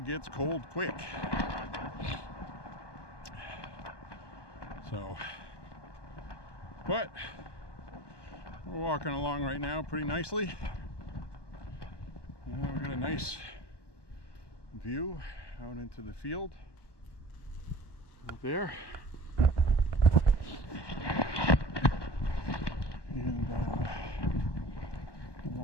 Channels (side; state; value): right; late; 1.2 ms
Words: gets cold quick. So, but we're walking along right now pretty nicely. We've got a nice view out into the field out there. And